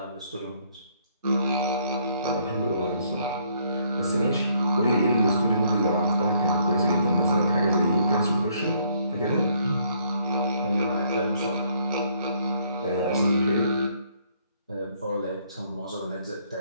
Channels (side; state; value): both; inverted; correlation -0.67